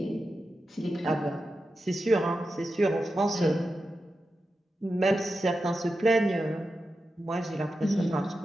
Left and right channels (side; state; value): both; normal; correlation 0.90